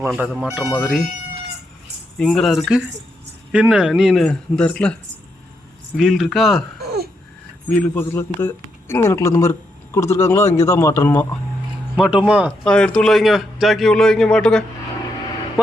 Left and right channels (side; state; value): both; normal; correlation 0.81